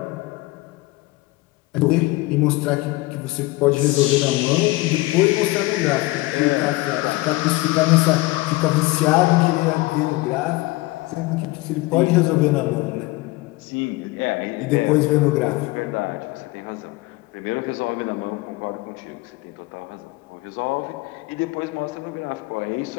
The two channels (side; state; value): right; quieter; 20.8 dB